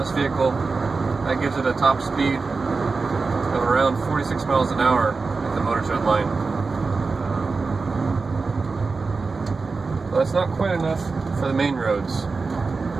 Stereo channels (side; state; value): left; quieter; 4.2 dB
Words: vehicle, that gives it a top speed of around 46 miles an hour at the motor shed line. So that's not quite enough for the main roads.